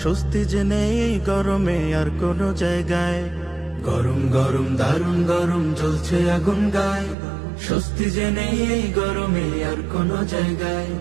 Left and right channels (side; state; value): left; drops out; at 7.2 s